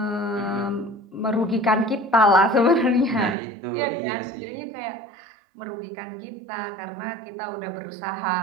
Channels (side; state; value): left; drops out; at 3.4 s